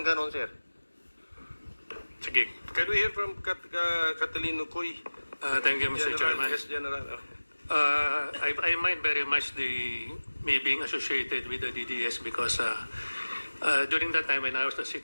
ganon, sir. Sige, can we hear from Catalino Coy? Thank you, Mr. Chairman. Yes, General. I mind very much me being associated with the DDS because during that time when I was the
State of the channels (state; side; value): inverted; both; correlation -1.00